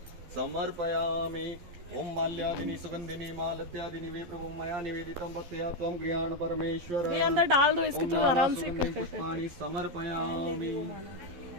समर्पयामि। ओम माल्यादिनी सुगंधिनी मालत्यादिनी वे प्रभु मया निवेदितं भक्त्या त्वं गृहाण परमेश्वर। ये अंदर डाल दो इसको, तो आराम से पुष्पाणि समर्पयामि।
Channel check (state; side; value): late; left; 12 ms